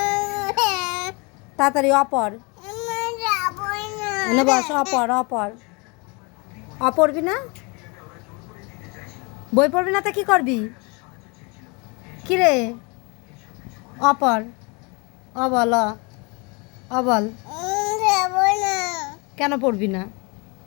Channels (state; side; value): quieter; right; 30.0 dB